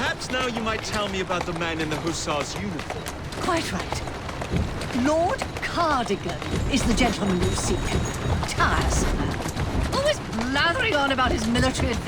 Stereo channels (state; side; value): identical; both; correlation 1.00